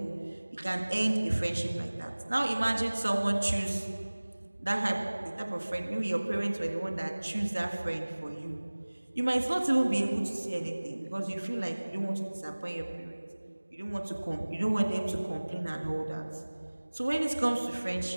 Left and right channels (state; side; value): inverted; both; correlation -1.00